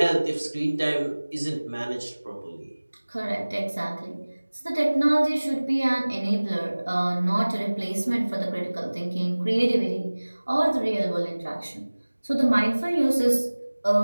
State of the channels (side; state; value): both; inverted; correlation -1.00